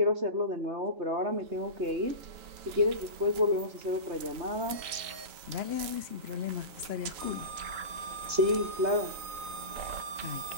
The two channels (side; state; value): left; late; 3.9 ms